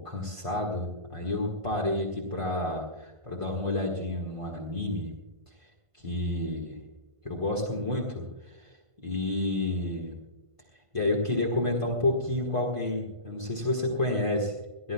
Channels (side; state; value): left; late; 1.5 ms